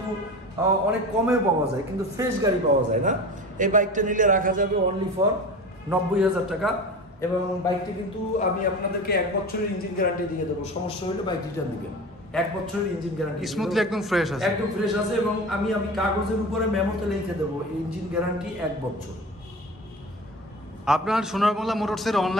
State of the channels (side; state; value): both; normal; correlation 0.33